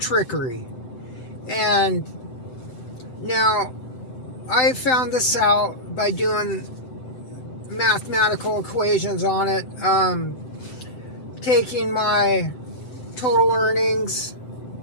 And now, I found this out by doing mathematical equations on it, taking my total earnings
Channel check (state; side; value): late; right; 7.8 ms